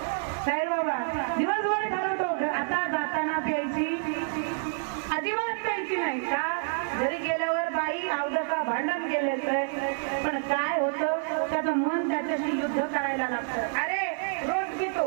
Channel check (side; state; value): left; silent; 59 dB below the other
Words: साई बाबा दिवसभर ठरवतो आता जाताना प्यायची अजिबात प्यायची नाही का. घरी गेल्यावर बाई अवदका भांडण केले तर पण काय होतं, त्याचं मन त्याच्याशी युद्ध करायला लागतं. अरे रोज पितो,